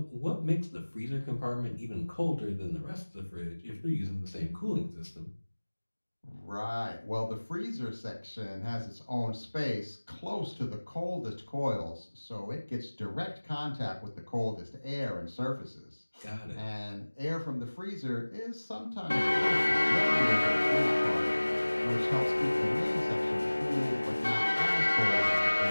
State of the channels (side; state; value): both; inverted; correlation -1.00